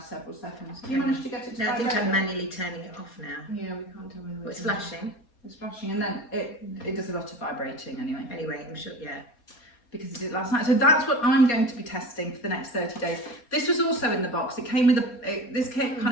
several seconds. You Okay. managed to get it to No, I think vibrate? I'm manually turning it off now. Yeah, we can't tell whether Oh, it's flashing. It's flashing, and then it does a lot of vibrating anyway. Anyway, I'm sure, yeah. Because I did it last night. So that's what I'm going to be testing for the next 30 days. This was also in the box. It came with kind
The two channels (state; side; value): late; right; 4.2 ms